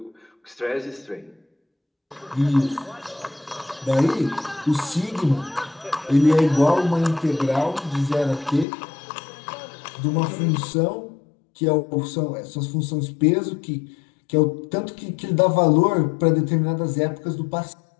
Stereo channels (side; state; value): right; drops out; at 8.7 s